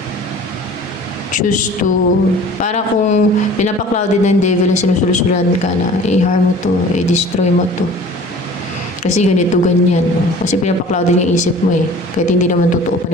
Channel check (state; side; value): normal; both; correlation 0.46